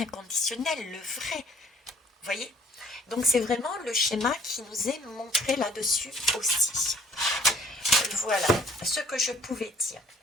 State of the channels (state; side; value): normal; both; correlation 0.56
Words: le vrai. Vous voyez? Donc c'est vraiment le schéma qui nous est montré là-dessus aussi. Voilà ce que je pouvais dire.